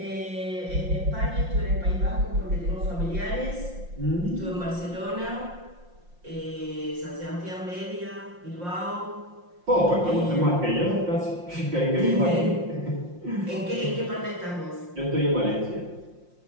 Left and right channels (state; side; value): late; left; 5.7 ms